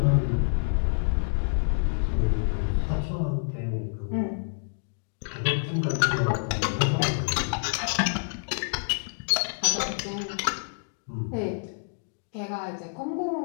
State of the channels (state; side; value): silent; right; digital silence